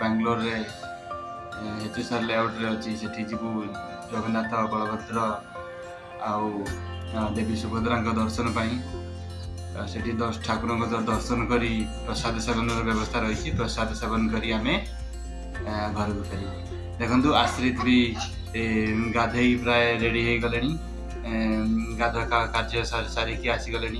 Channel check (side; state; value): both; identical; correlation 1.00